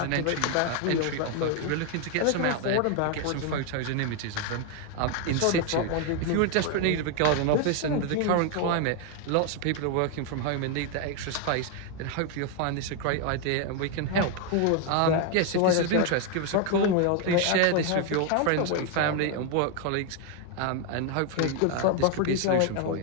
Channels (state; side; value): different; both; correlation 0.00